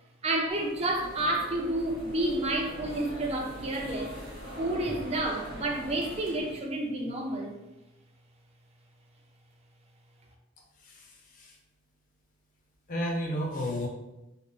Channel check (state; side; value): normal; both; correlation 0.31